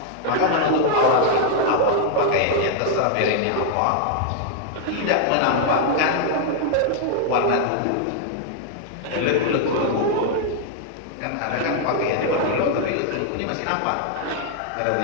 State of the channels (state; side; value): different; both; correlation 0.00